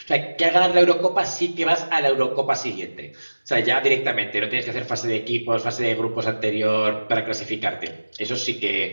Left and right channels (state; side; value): inverted; both; correlation -1.00